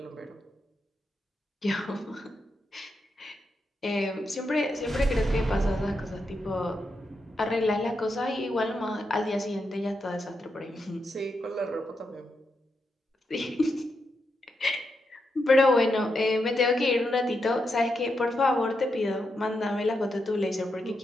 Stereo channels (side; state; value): both; normal; correlation 0.84